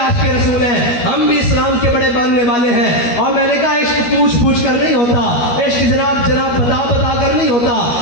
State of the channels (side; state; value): right; late; 12 ms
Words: رسول ہیں، ہم بھی اسلام کے بڑے ماننے والے ہیں. اور میں نے کہا عشق پوچھ کر نہیں ہوتا، عشق جناب بتا کر نہیں ہوتا.